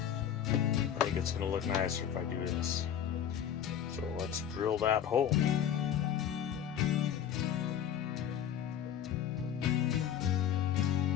I think it's going to look nicer if I do this. So let's drill that hole.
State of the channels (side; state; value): right; quieter; 9.4 dB